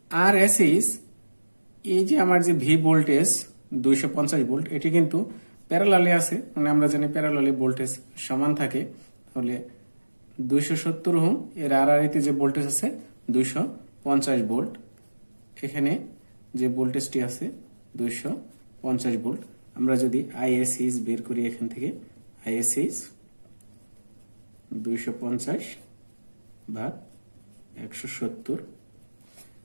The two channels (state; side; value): inverted; both; correlation -1.00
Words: আরএসএস, এই যে আমার যে ভি ভোল্টেজ 250 ভোল্ট, এটি কিন্তু প্যারালালে আছে, মানে আমরা জানি প্যারালালে ভোল্টেজ সমান থাকে। তাহলে 270 ওহম এর আরআরএতে যে ভোল্টেজ আছে 250 ভোল্ট। এখানে যে ভোল্টেজটি আছে 250 ভোল্ট। আমরা যদি আইএসএস বের করি, এখান থেকে আইএসএস 250 ভাগ 170,